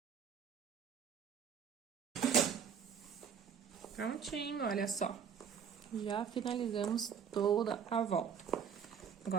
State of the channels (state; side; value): quieter; left; 7.3 dB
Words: Prontinho, olha só. Já finalizamos toda a volta.